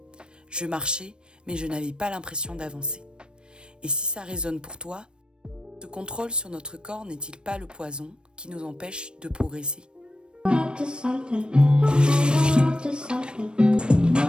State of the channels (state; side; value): late; left; 0.054 ms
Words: Je marchais, mais je n'avais pas l'impression d'avancer. Et si ça résonne pour toi, ce contrôle sur notre corps n'est-il pas le poison qui nous empêche de progresser?